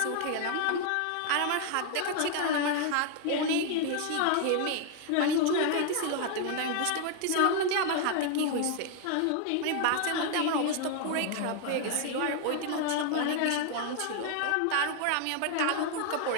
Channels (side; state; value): both; different; correlation 0.00